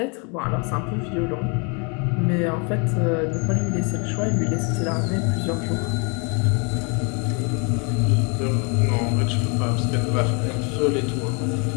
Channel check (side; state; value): right; quieter; 33.7 dB